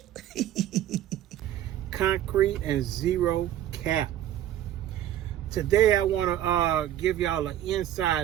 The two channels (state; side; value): quieter; left; 12.0 dB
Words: Concrete and zero cap. Today I want to give y'all an